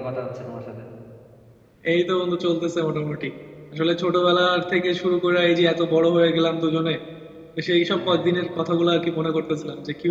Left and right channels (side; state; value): both; identical; correlation 1.00